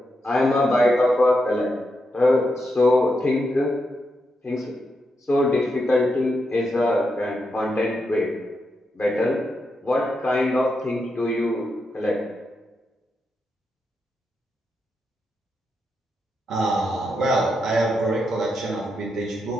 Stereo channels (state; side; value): normal; both; correlation 0.84